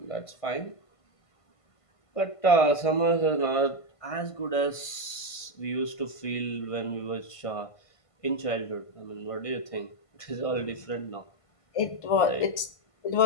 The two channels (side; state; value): right; late; 1.5 ms